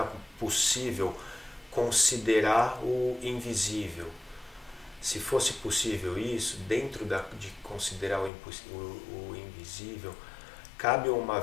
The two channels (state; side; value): drops out; right; at 8.3 s